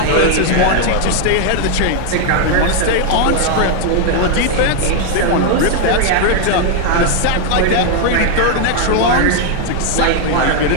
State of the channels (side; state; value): both; different; correlation 0.00